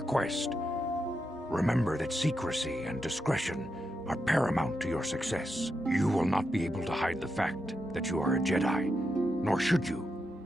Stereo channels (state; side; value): normal; both; correlation 0.85